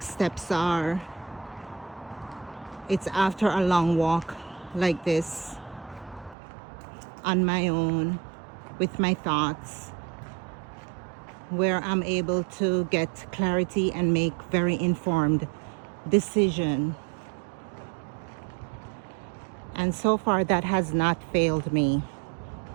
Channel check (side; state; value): left; drops out; at 6.4 s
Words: steps are, it's after a long walk like this, on my own, with my thoughts, where I'm able to get clarity and make very informed decision. And so far that has not failed me